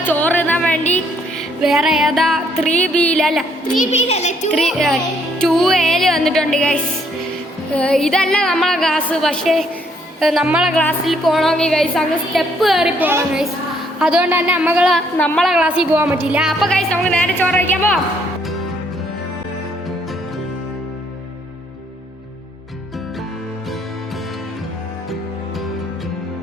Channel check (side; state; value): both; normal; correlation 0.68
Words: ചോറ് തിന്നാൻ വേണ്ടി വേറെ ഏതാ 3Bയിലല്ല 2Aയിൽ വന്നിട്ടുണ്ട് ഗൈസ്. ഇതല്ല നമ്മളെ ക്ലാസ്, പക്ഷേ നമ്മളെ ക്ലാസ്സിൽ പോകണമെങ്കിൽ ഗൈസ് അങ്ങ് സ്റ്റെപ്പ് കയറി പോകണം ഗൈസ്. അതുകൊണ്ട് തന്നെ നമ്മളെ ക്ലാസ്സിൽ പോകാൻ പറ്റില്ല. അപ്പോൾ ഗൈസ് നമുക്ക് നേരെ ചോറ് വയ്ക്കാൻ പോവാം.